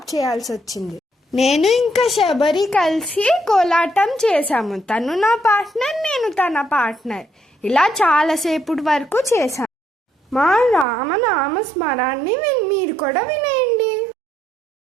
చేయాల్సి వచ్చింది. నేను ఇంకా శబరి కలిసి కోలాటం చేశాము. తను నా పార్ట్నర్, నేను తన పార్ట్నర్. ఇలా చాలాసేపటి వరకు చేశాను. మా రామనామ స్మరాన్ని మీరు కూడా వినేయండి.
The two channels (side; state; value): left; drops out; at 10.9 s